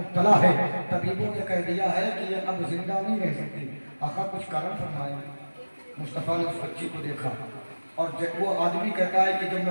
ہے. طبیبوں نے کہہ دیا ہے کہ یہ اب زندہ نہیں رہ سکتی. آقا کچھ کارن فرمائے. مصطفیٰ نے اس بچی کو دیکھا اور جب وہ آدمی کہتا ہے کہ جب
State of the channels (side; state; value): both; inverted; correlation -1.00